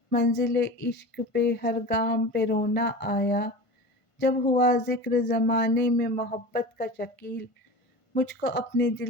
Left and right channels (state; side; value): late; right; 1.5 ms